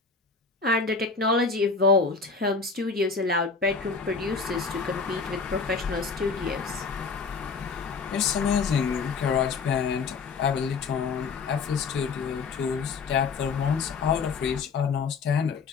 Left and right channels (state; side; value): quieter; right; 4.8 dB